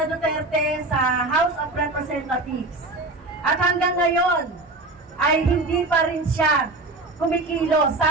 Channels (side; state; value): left; quieter; 3.1 dB